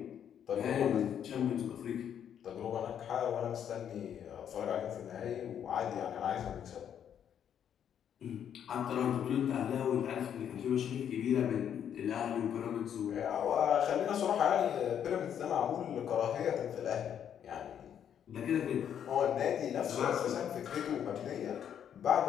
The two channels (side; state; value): right; quieter; 9.1 dB